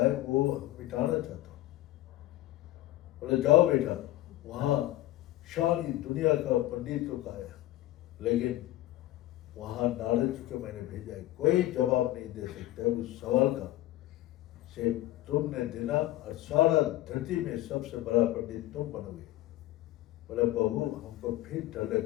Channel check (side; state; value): right; quieter; 15.8 dB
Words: है वो मिटाना चाहता हूँ। बोले जाओ बेटा, वहाँ सारी दुनिया का पंडित लोग आया, लेकिन वहाँ नारद जी को मैंने भेजा है, कोई जवाब नहीं दे सकता है उस सवाल का से तुमने देना और सारा धरती में सबसे बड़ा पंडित तुम बनोगे। बोले बहू हमको फिर डर